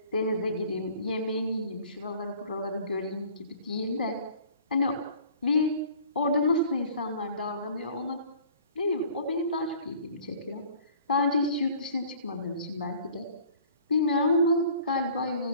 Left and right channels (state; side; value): inverted; both; correlation -0.51